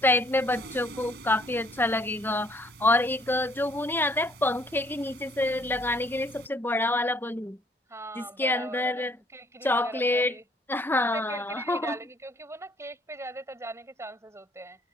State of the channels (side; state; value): both; normal; correlation 0.63